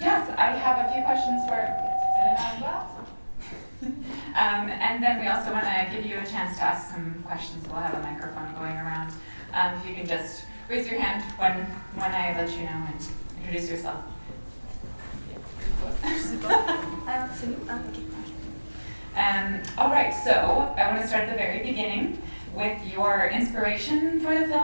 I have a few questions for Elena as well. And then we also want to give you a chance to ask some questions. We'll have a microphone going around. If you can just raise your hand when I let you know and introduce yourself. All right, so I want to start at the very beginning with your inspiration for the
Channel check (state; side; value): inverted; both; correlation -1.00